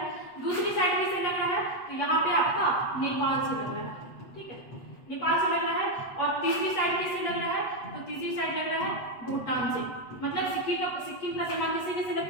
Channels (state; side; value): late; right; 8.3 ms